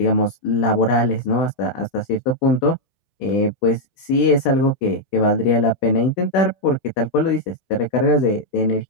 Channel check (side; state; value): right; late; 16 ms